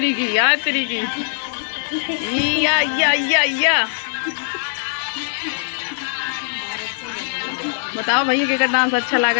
या बताओ भैया के डांस अच्छा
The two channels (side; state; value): right; silent; digital silence